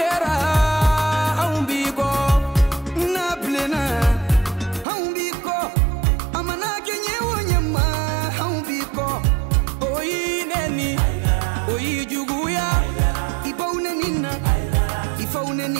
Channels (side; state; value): left; drops out; at 4.9 s